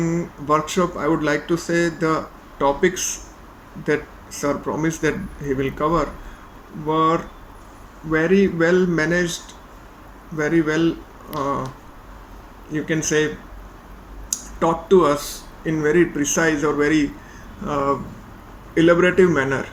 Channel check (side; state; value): both; identical; correlation 1.00